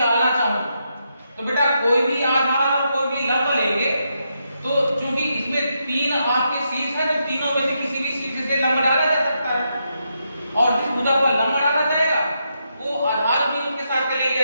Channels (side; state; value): both; inverted; correlation -0.82